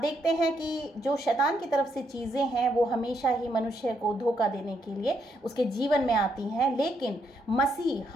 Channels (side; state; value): both; normal; correlation 0.76